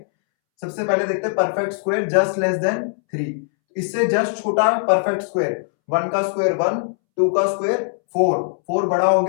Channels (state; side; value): silent; right; 65 dB below the other